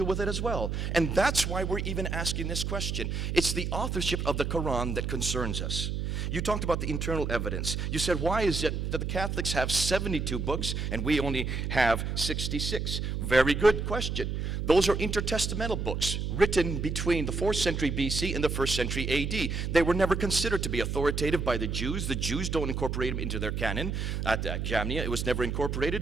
with it as well. And that's why we're even asking this question. It's the authorship of the Quran that concerns us. You talked about the internal evidence. You said, why is it that the Catholics have 72 books and we only have 66? Very good question. Those are intertestamental books written between the 4th century BC and the 1st century AD. They were never considered to be authoritative by the Jews. The Jews don't incorporate them into their canon. At Jamnia, it was never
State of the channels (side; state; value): right; noise; hum, 2 dB below the sound